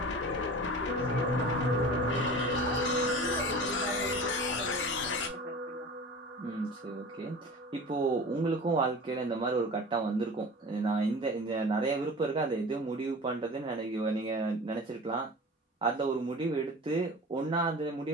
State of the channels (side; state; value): both; normal; correlation 0.37